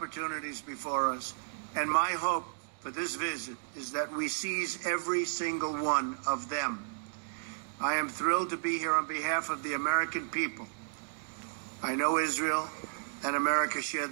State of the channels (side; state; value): left; silent; digital silence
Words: before us, and my hope for this visit is that we seize every single one of them. I am thrilled to be here on behalf of the American people. I know Israel and America share